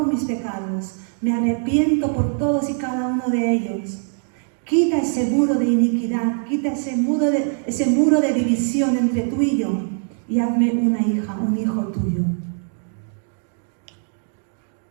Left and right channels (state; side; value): silent; left; 60 dB below the other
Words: mis pecados, me arrepiento por todos y cada uno de ellos. Quita ese muro de iniquidad, quita ese muro de división entre tú y yo, y hazme una hija, un hijo tuyo.